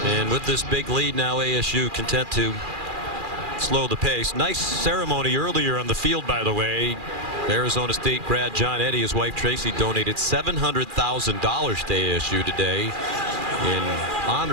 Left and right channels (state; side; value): late; left; 2.4 ms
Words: and with this big lead now, ASU content to slow the pace. Nice ceremony earlier on the field, by the way. Arizona State grad John Eddy, his wife Tracy, donated $700,000 to ASU today in